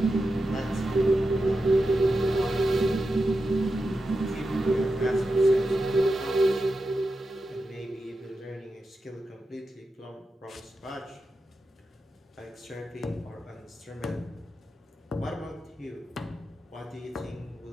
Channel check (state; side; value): normal; both; correlation 0.90